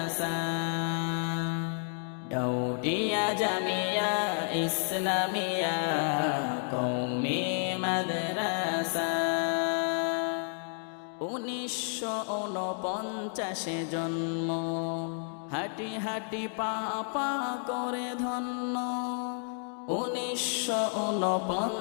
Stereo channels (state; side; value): silent; right; 57 dB below the other